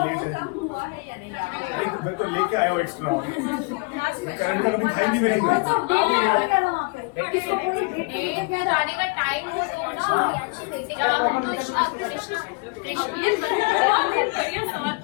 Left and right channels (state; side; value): quieter; right; 31.3 dB